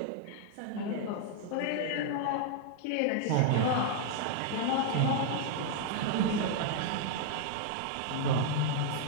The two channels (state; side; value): different; both; correlation 0.00